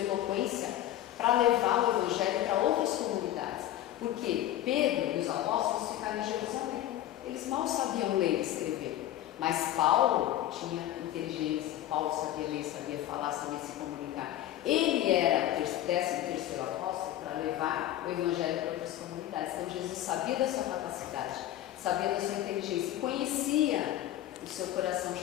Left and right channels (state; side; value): quieter; right; 13.1 dB